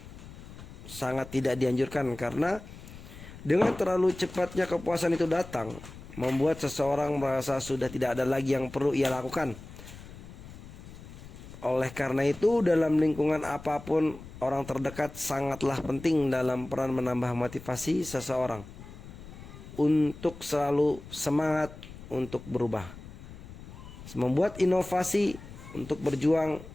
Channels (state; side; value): noise; left; rumble, 15 dB below the sound